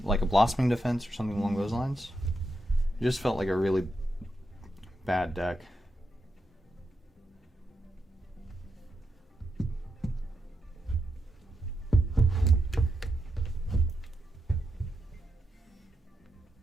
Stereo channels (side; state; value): both; normal; correlation 0.84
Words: like a Blossoming Defense or something along those lines. It just felt like a really bad deck.